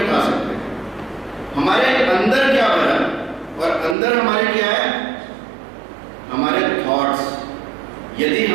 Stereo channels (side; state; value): left; drops out; at 4.0 s